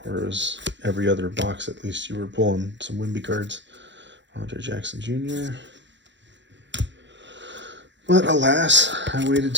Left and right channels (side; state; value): left; late; 0.53 ms